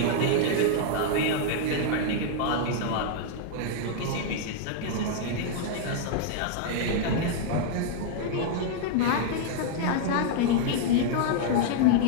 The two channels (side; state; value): both; different; correlation -0.01